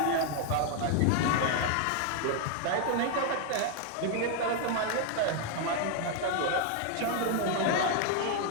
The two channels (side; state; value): both; different; correlation 0.00